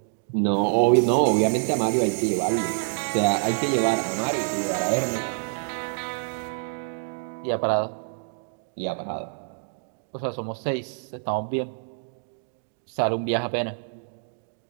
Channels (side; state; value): left; silent; digital silence